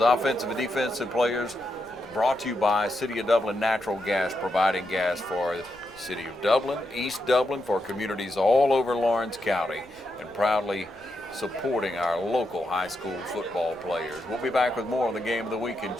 offensive and defensive players brought to you by City of Dublin Natural Gas, providing gas for City of Dublin, East Dublin, for communities all over Lawrence County, and proudly supporting our local high school football players. We'll be back with more on the Game of the Week in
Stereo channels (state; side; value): noise; left; rumble, 27 dB below the sound